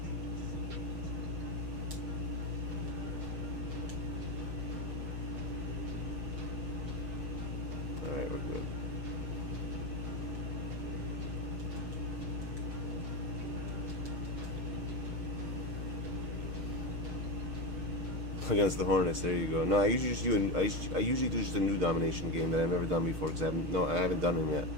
Alright, we're good. Against the Hornets, there you go. No, I usually just do I usually do just a new domination game that I've never done before because I haven't done them yet.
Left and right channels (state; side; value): late; left; 6.5 ms